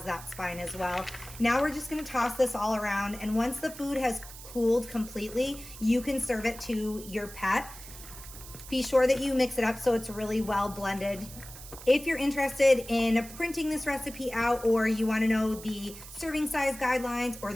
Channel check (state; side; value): noise; right; hiss, 15 dB below the sound